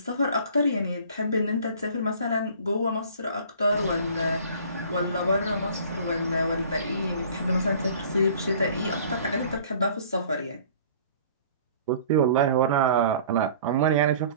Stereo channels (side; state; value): both; inverted; correlation -0.49